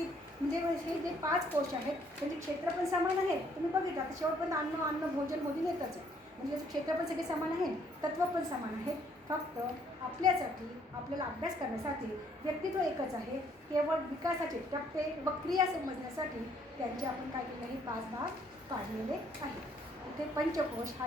म्हणजे हे जे 5 कोश आहेत त्यांचे क्षेत्र पण समान आहे. तुम्ही बघितलं आता शेवटपर्यंत अन्न भोजन मोदी येतच आहे. म्हणजे याचं क्षेत्र पण सगळे समान आहे, तत्व पण समान आहे. फक्त आपल्यासाठी आपल्याला अभ्यास करण्यासाठी व्यक्तित्व एकच आहे. केवळ विकासाचे टप्पे व क्रिया समजण्यासाठी त्यांचे आपण काय केले हे 5 भाग काढलेले आहेत. इथे पंचकोश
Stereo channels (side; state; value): both; normal; correlation 0.65